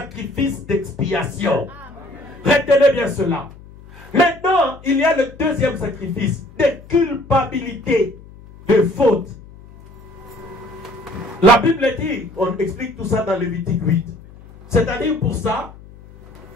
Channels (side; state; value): left; noise; hum, 20 dB below the sound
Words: d'expiation. Retenez bien cela. Maintenant, il y a le deuxième sacrifice de culpabilité, de faute. La Bible dit, on explique tout ça dans Lévitique 8. C'est-à-dire pour ça,